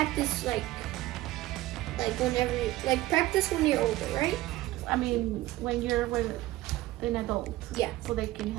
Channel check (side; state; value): left; quieter; 16.6 dB